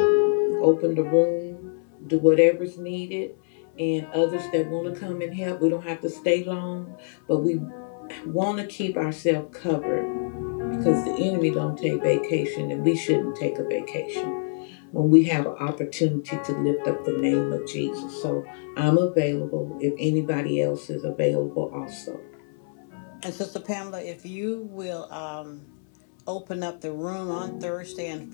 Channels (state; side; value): silent; right; 59 dB below the other